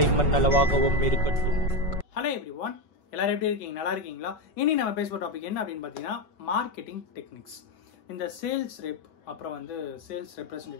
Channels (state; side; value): late; right; 5.2 ms